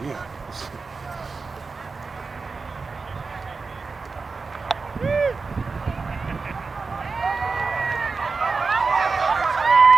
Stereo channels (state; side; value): quieter; left; 4.4 dB